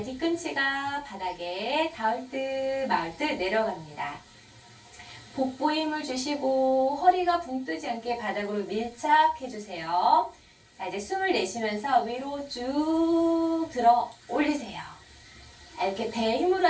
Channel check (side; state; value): both; identical; correlation 1.00